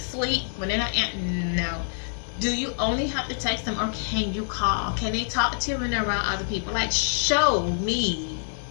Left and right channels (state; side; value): silent; right; digital silence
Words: When they're not no. Do you only have to text them, or can you call? Can they talk to you when they're around other people? Like, show me.